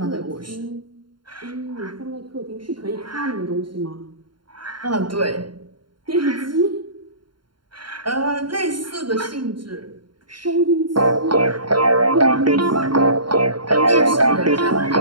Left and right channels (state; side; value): late; left; 0.72 ms